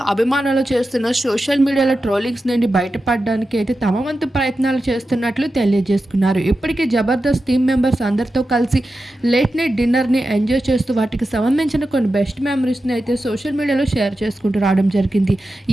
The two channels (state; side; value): normal; both; correlation 0.91